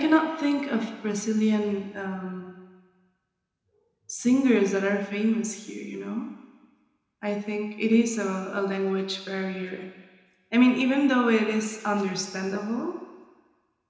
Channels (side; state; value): both; identical; correlation 1.00